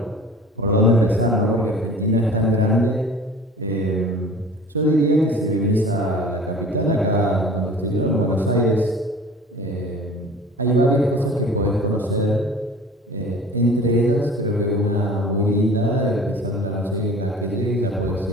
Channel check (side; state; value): both; normal; correlation 0.43